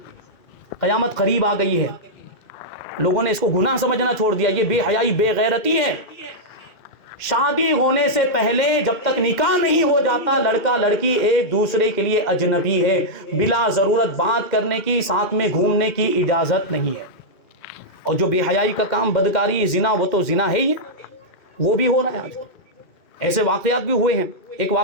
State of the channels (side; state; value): right; late; 2.1 ms